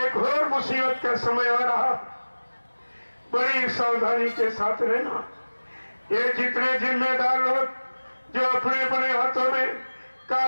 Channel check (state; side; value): inverted; both; correlation -1.00